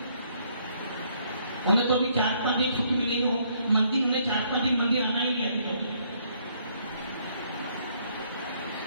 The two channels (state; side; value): inverted; both; correlation -0.68